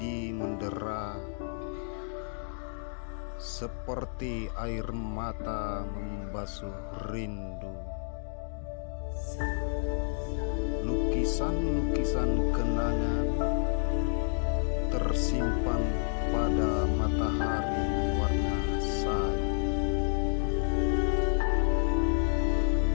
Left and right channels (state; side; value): silent; right; digital silence